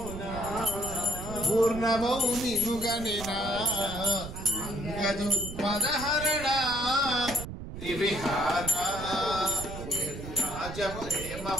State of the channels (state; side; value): noise; right; rumble, 9 dB below the sound